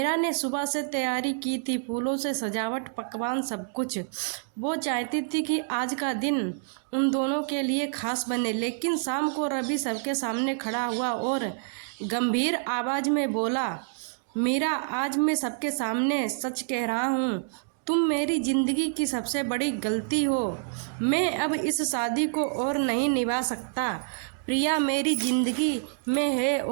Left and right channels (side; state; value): left; silent; digital silence